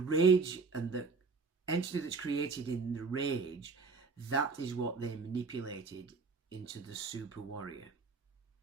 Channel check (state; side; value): quieter; left; 4.5 dB